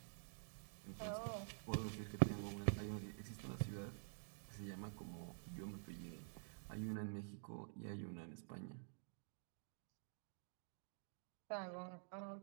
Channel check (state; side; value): silent; left; digital silence